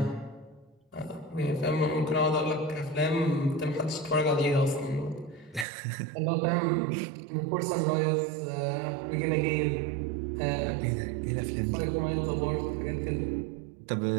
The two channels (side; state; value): left; drops out; at 5.7 s